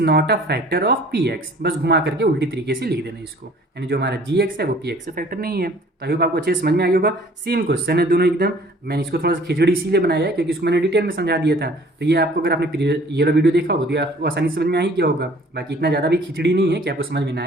a factor of PX, बस घुमा करके उल्टी तरीके से लिख देना इसको, यानी जो हमारा GX है वो PX से फैक्टर नहीं है। तो आई होप आपको अच्छे से समझ में आ गया होगा। सेम क्वेश्चन है दोनों एकदम, मैंने इसको थोड़ा सा खिचड़ी इसीलिए बनाया है क्योंकि इसको मैंने डिटेल में समझा दिया था। तो ये आपको अगर आपने ये वाला वीडियो देखा होगा तो ये आपको आसानी से समझ में आ ही गया होगा। बाकी इतना ज़्यादा भी खिचड़ी नहीं है कि आपको समझ में ना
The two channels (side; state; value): both; normal; correlation 0.53